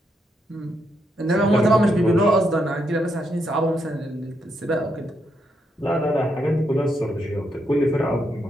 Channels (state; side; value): normal; both; correlation 0.79